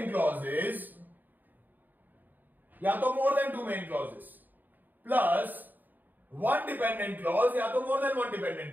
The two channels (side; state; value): left; late; 0.087 ms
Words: clauses या तो more than two main clauses plus one dependent clause या तो more than one dependent